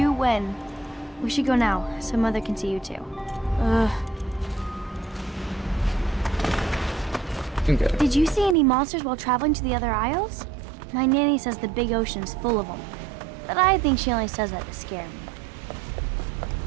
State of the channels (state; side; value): drops out; left; at 8.6 s